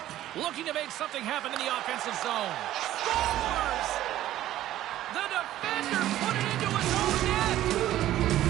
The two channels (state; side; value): quieter; left; 13.6 dB